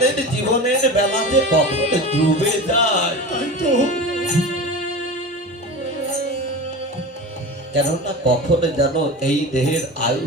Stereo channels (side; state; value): both; normal; correlation 0.30